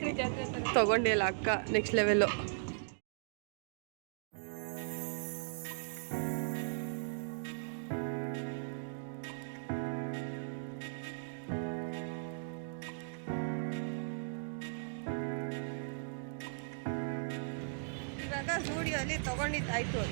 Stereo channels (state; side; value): silent; left; digital silence